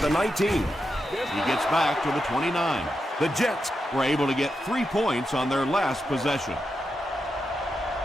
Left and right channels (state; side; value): normal; both; correlation 0.87